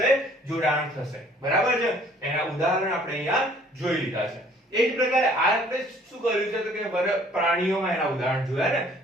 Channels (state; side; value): normal; both; correlation 0.57